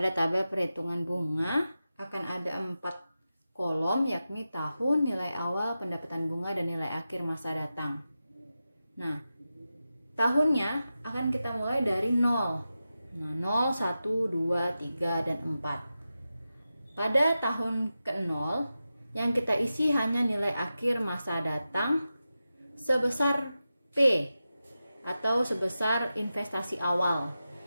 tabel perhitungan bunga akan ada 4 kolom, yakni tahun, nilai awal, pendapatan bunga, dan nilai akhir masa datang. Nah, tahunnya akan kita mulai dari 0. Nah, 0, 1, 2, 3, dan 4. Pada tahun ke-0, yang kita isi hanya nilai akhir masa datang sebesar P atau sebesar investasi awal,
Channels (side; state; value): both; inverted; correlation -0.92